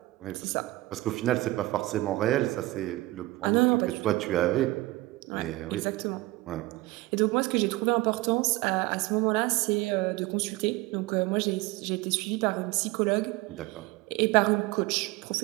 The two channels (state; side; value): quieter; left; 19.6 dB